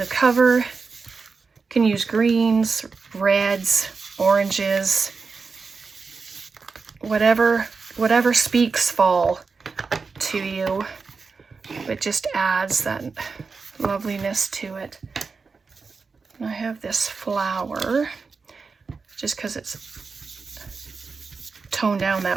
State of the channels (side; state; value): left; quieter; 4.7 dB